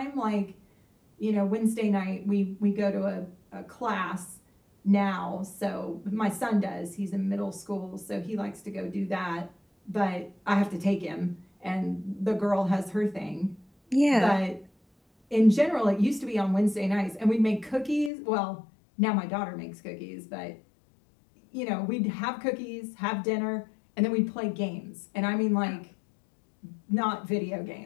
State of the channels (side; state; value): right; drops out; at 18.1 s